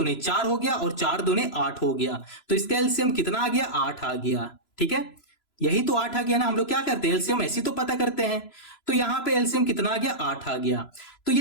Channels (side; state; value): right; late; 3.0 ms